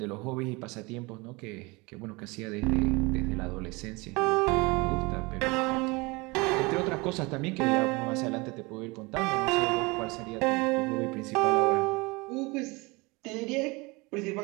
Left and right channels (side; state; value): left; quieter; 25.5 dB